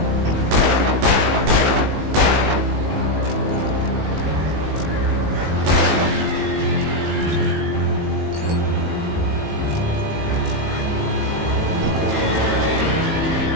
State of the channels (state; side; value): late; left; 19 ms